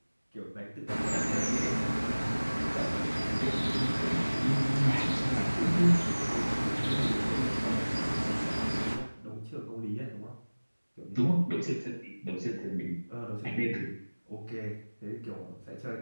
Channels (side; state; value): both; inverted; correlation -1.00